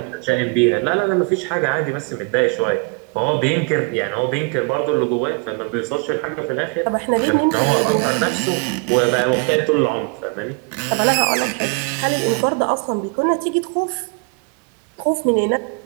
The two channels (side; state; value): left; quieter; 32.2 dB